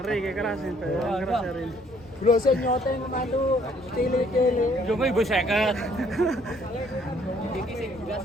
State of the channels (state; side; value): normal; both; correlation 0.63